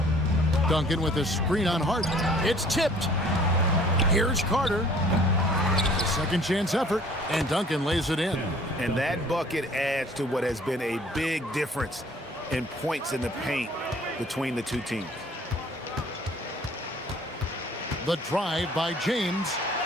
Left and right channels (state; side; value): normal; both; correlation 0.54